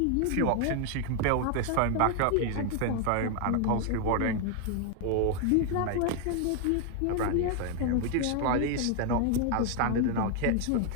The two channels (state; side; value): different; both; correlation 0.01